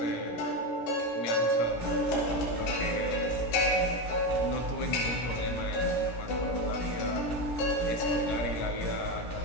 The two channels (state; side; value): late; right; 17 ms